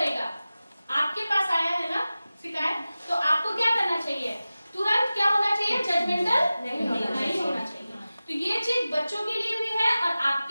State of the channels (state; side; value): inverted; both; correlation -0.96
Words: आपके पास आया है ना शिकायत, तो आपको क्या करना चाहिए? तुरंत क्या होना चाहिए? जजमेंटल नहीं होना चाहिए. तो ये चीज बच्चों के लिए भी है और